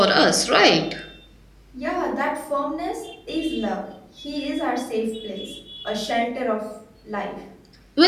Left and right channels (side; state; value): both; identical; correlation 1.00